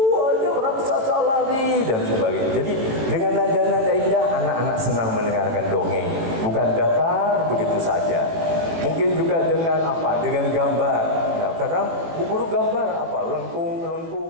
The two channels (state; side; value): late; left; 18 ms